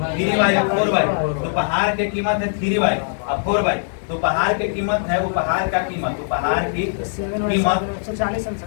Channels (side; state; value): right; silent; digital silence